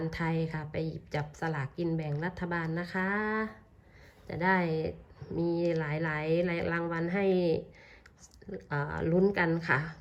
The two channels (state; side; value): identical; both; correlation 1.00